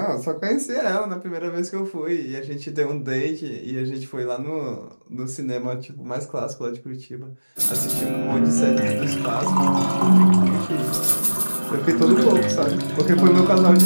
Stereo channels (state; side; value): inverted; both; correlation -1.00